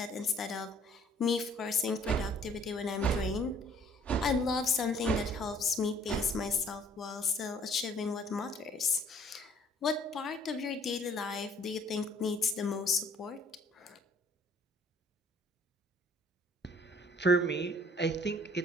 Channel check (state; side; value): normal; both; correlation 0.58